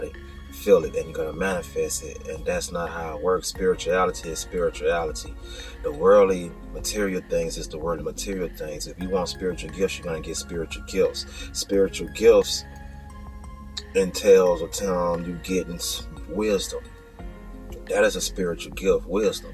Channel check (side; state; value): both; identical; correlation 1.00